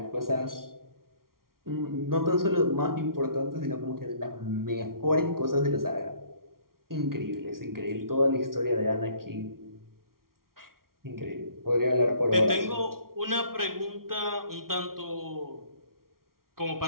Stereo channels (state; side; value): late; left; 0.93 ms